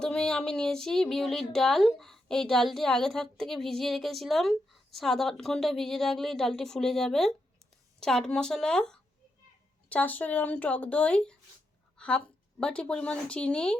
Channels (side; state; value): both; normal; correlation 0.84